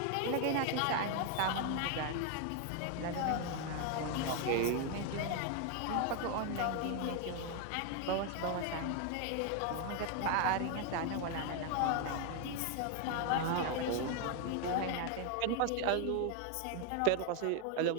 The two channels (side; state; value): both; different; correlation 0.01